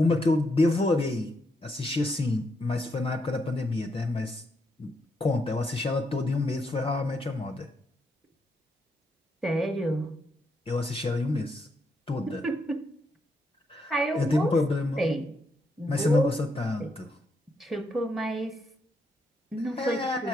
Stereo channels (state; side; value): normal; both; correlation 0.78